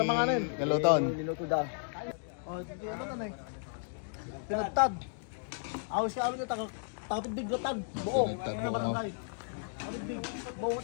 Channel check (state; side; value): silent; right; digital silence